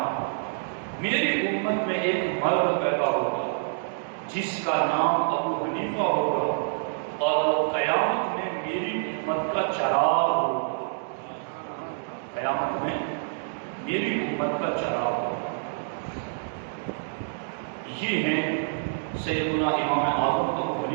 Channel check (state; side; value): silent; left; digital silence